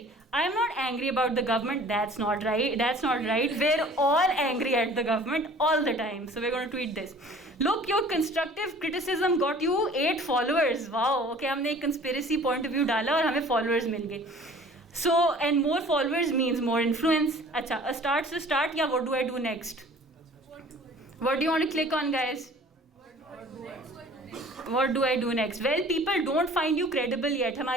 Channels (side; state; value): both; normal; correlation 0.48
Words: I am not angry about the government. That's not right. We're all angry at the government all the time. So we gonna tweet this. Look, your constructive criticism got you 8 followers. Wow, okay, हमने एक conspiracy point of view डाला और हमें followers मिल गए. So and more followers means more influence. अच्छा, start या what do I do next? What do you want to click on guys? What do I do next? Well, people don't find you credible yet.